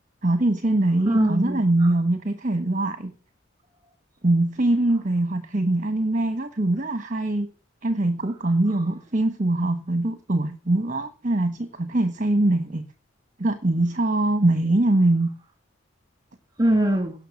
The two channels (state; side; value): normal; both; correlation 0.82